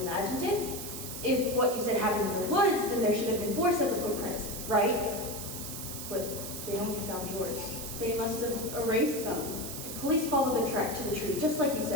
it? If what you said happened in the woods, then there should have been 4 sets of footprints, right? But they only found yours. They must have erased them. The police followed the track to the tree, just like you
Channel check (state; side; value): noise; right; hiss, 8 dB below the sound